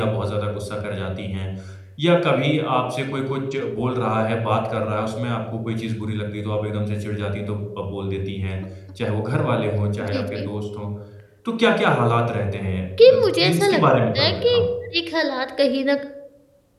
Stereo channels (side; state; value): both; identical; correlation 1.00